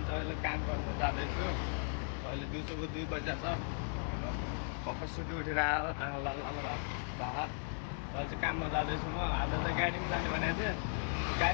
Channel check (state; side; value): silent; right; 53 dB below the other